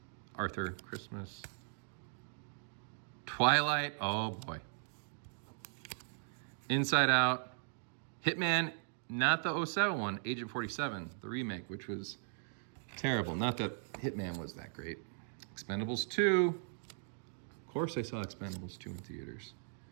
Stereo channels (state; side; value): silent; left; digital silence